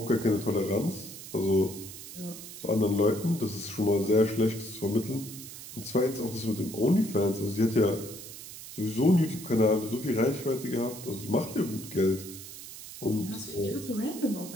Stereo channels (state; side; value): noise; right; hiss, 13 dB below the sound